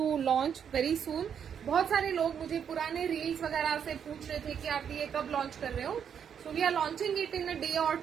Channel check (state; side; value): quieter; left; 7.9 dB